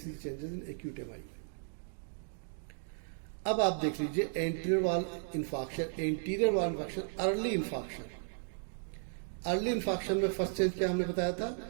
चेंजेस इन एक्यूट एमआई। अब आप देख लीजिए anterior wall infarction, early infarction. Early infarction में फर्स्ट चेंज क्या हमने बताया था,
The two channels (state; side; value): silent; left; digital silence